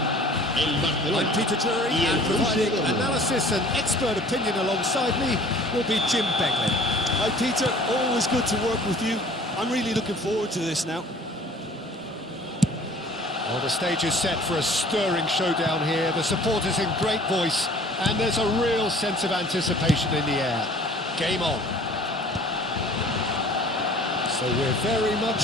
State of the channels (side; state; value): both; normal; correlation 0.50